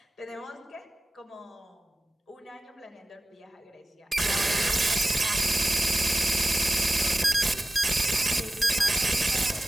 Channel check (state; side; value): normal; both; correlation 0.96